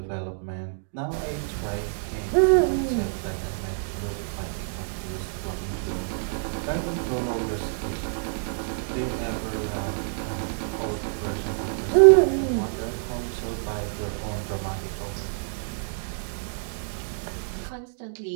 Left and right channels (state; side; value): silent; left; digital silence